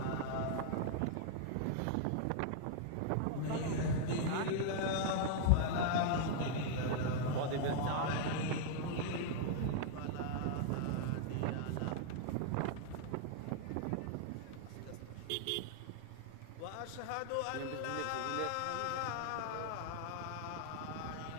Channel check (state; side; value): different; both; correlation -0.01